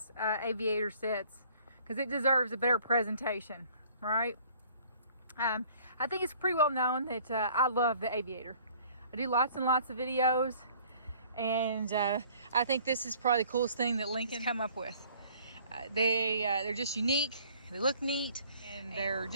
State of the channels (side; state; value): both; inverted; correlation -0.55